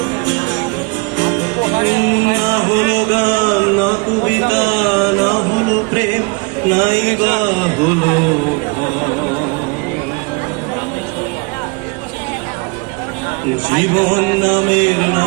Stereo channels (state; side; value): quieter; left; 29.7 dB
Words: না হলো গান না কবিতা না হলো প্রেম নাই বা হলো জীবন নামের